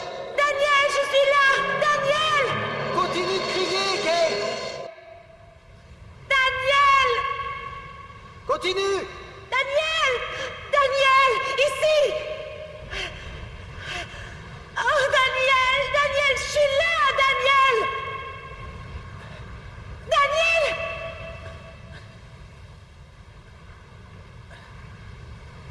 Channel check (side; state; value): both; identical; correlation 1.00